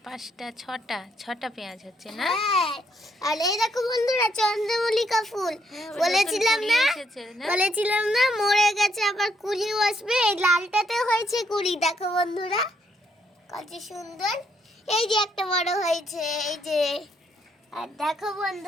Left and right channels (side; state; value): both; normal; correlation 0.73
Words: পাঁচটা ছটা পেঁয়াজ হচ্ছে না? হ্যাঁ, আর এই দেখো বন্ধুরা চন্দ্রমল্লিকা ফুল। বলেছিলাম না মরে গেছে, আবার কুড়িও আসবে। এই লালটাতে হয়েছে কুড়ি, দেখো বন্ধুরা কত সুন্দর। এই যে একটা বড় হয়েছে, এই যে। আর দেখো